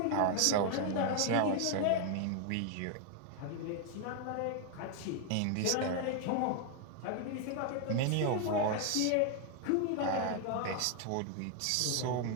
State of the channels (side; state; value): both; different; correlation 0.01